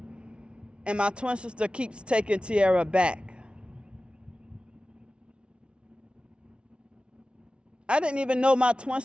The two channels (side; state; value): left; late; 0.058 ms